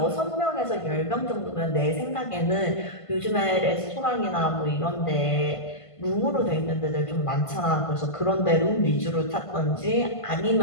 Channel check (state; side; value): late; right; 1.5 ms